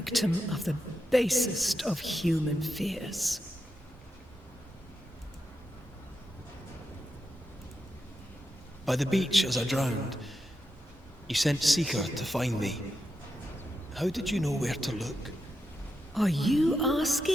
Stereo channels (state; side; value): normal; both; correlation 0.86